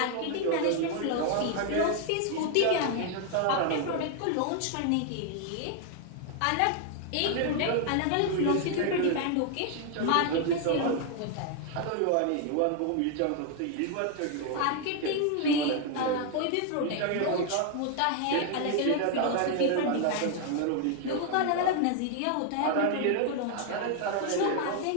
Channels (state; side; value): different; both; correlation 0.00